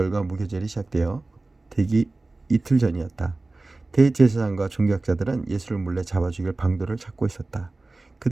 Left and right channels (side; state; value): left; quieter; 3.2 dB